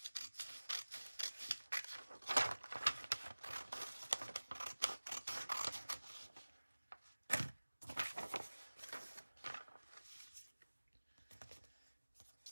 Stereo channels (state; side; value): inverted; both; correlation -1.00